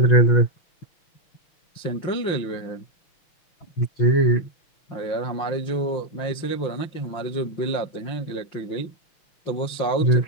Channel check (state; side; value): late; right; 5.7 ms